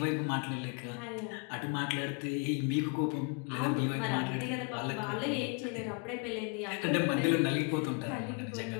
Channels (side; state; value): right; quieter; 36.1 dB